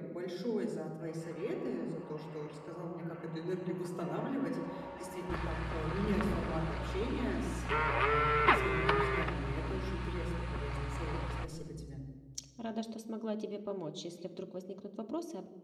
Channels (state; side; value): identical; both; correlation 1.00